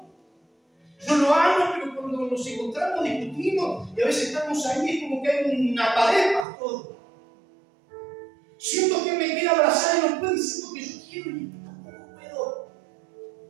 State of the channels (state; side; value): drops out; left; at 6.5 s